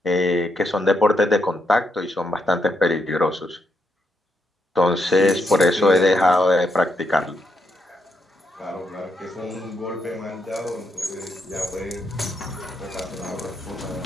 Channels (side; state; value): both; normal; correlation 0.79